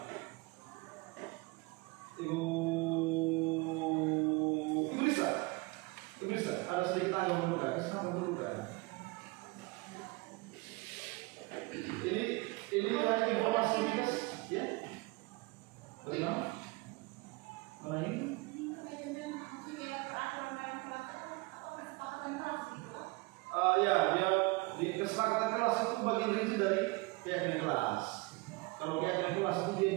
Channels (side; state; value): left; quieter; 24.7 dB